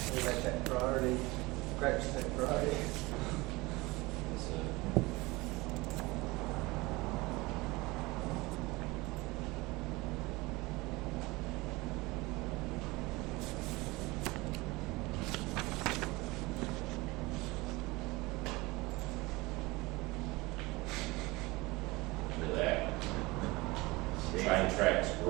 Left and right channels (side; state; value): left; quieter; 22.4 dB